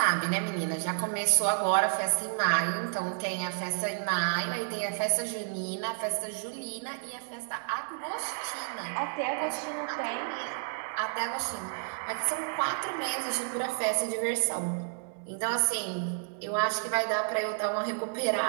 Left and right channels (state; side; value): silent; left; digital silence